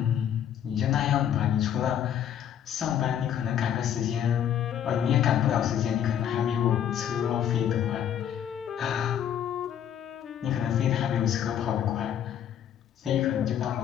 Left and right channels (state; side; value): quieter; right; 9.6 dB